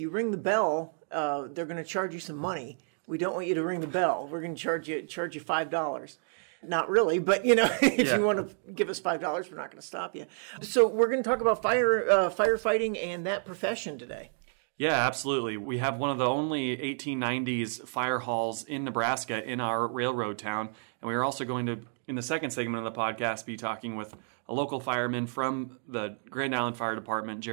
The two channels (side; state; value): left; silent; 58 dB below the other